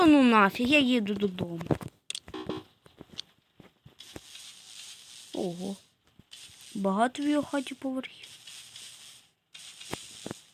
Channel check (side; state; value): both; identical; correlation 1.00